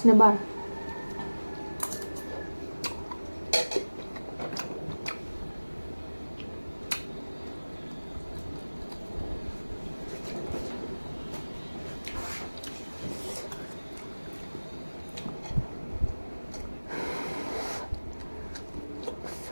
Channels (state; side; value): inverted; both; correlation -1.00